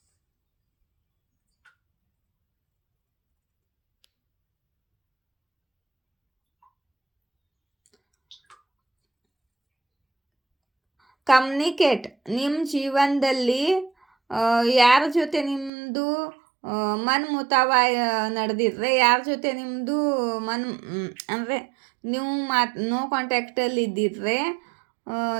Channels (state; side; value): drops out; left; at 15.7 s